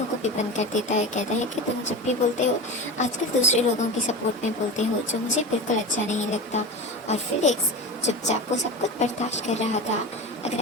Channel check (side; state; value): both; normal; correlation 0.27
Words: को भी बंद कर देता है। कहता है कि तुम जब भी बोलते हो आजकल दूसरे लोगों की सपोर्ट में बोलते हो, जो मुझे बिल्कुल अच्छा नहीं लगता। और फिलिक्स चुपचाप वो सब कुछ बर्दाश्त कर रहा था। अगर